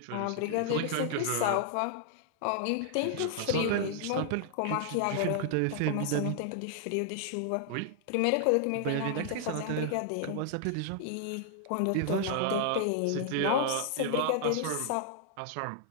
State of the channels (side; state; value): both; different; correlation 0.00